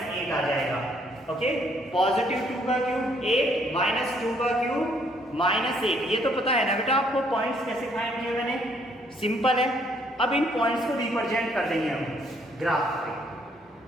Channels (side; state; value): both; normal; correlation 0.67